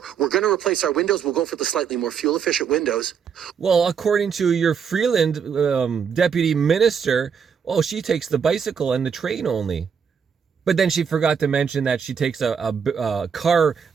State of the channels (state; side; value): quieter; left; 6.9 dB